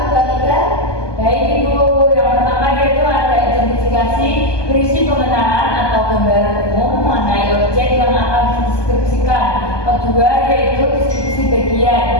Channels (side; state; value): right; late; 1.2 ms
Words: gambaran umum mengenai objek yang akan dideskripsikan. Kedua yaitu deskripsi bagian,